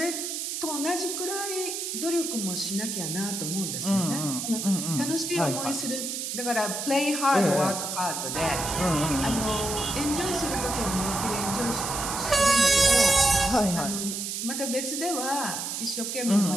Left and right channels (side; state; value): right; noise; hiss, 4 dB below the sound